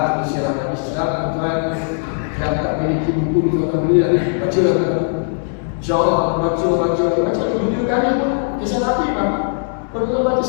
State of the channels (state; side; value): silent; right; 64 dB below the other